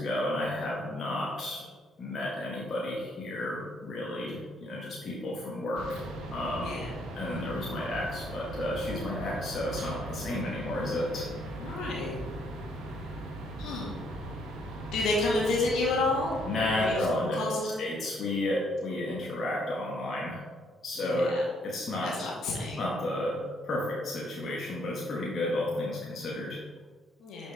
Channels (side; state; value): both; normal; correlation 0.69